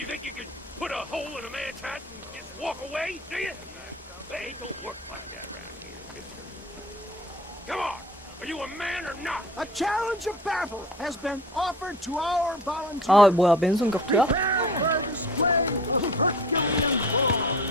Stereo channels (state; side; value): normal; both; correlation 0.40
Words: think you can put a hole in a man's hat and just walk away, do you? Hey, it don't work like that around here, mister. Come on! Are you a man or not? A challenge of battle has been offered to our volunteers. 아 뭐야 맨손 격투야? Prepare for a display of Herculean force.